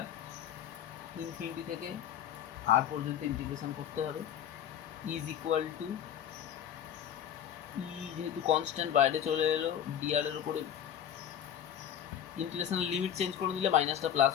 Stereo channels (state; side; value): quieter; right; 9.7 dB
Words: infinity থেকে আর পর্যন্ত ইন্টিগ্রেশন করতে হবে, ইজ ইকুয়াল টু ই যেহেতু কনস্ট্যান্ট বাইরে চলে এলো, ডিআর এর উপরে ইন্টিগ্রেশনের লিমিট চেঞ্জ করে দিলে মাইনাসটা প্লাস